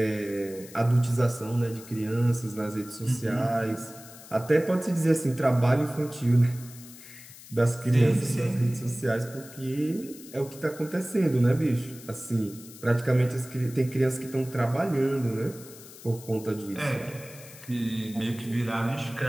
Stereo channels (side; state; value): left; noise; hiss, 18 dB below the sound